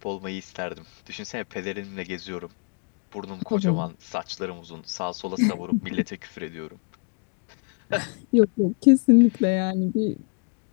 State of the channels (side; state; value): right; quieter; 36.3 dB